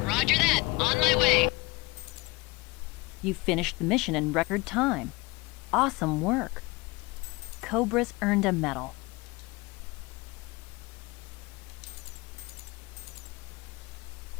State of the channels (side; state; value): right; quieter; 23.6 dB